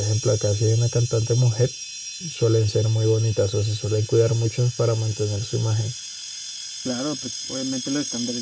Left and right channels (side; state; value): both; identical; correlation 1.00